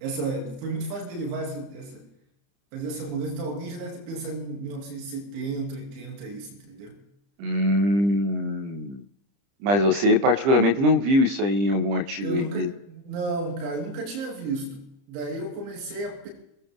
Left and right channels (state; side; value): late; left; 30 ms